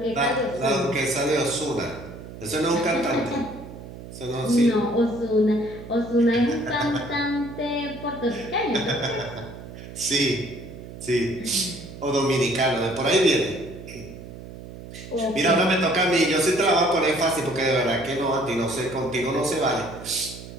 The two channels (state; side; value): noise; right; hum, 14 dB below the sound